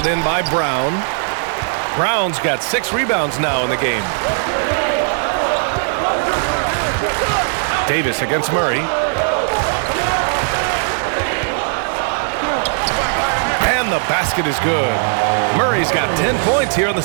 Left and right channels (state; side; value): silent; left; 68 dB below the other